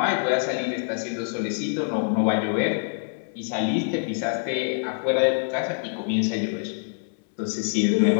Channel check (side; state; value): right; silent; 62 dB below the other